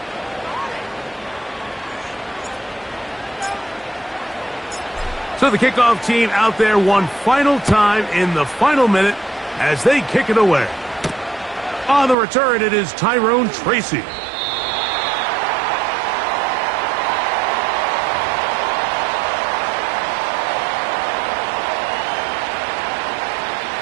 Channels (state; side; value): drops out; left; at 12.2 s